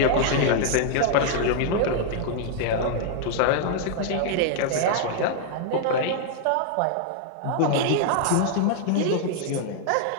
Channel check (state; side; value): different; both; correlation 0.00